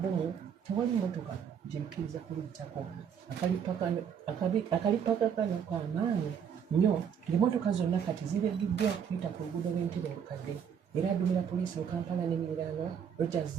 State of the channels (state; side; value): quieter; left; 7.8 dB